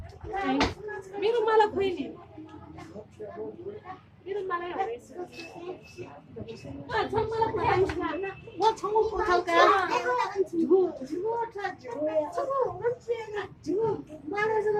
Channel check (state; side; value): identical; both; correlation 1.00